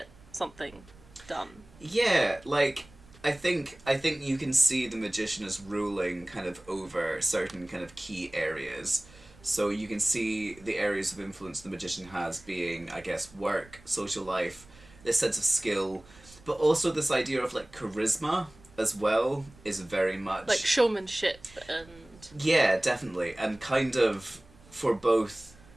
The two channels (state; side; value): noise; right; rumble, 24 dB below the sound